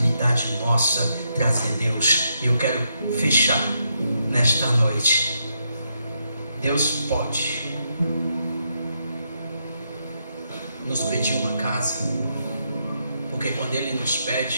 nossa trazer Deus. E eu quero fechar nesta noite. Deus pode nos pedir uma casa, porque quando Ele nos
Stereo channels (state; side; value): inverted; both; correlation -0.80